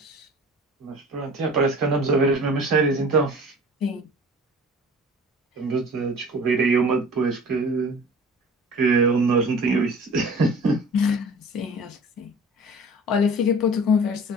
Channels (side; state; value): both; normal; correlation 0.43